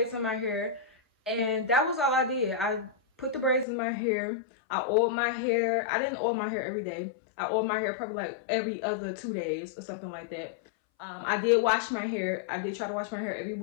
in my hair, and that was all I did. I put the braids in my hair. I oiled my hair. I didn't oil my hair every day. I oiled my hair probably like every other 2 days or something like that. I did wash my hair. I did try to wash my hair every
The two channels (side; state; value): right; drops out; at 3.7 s